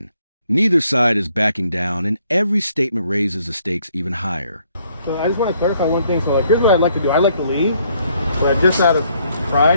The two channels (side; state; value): both; inverted; correlation -0.68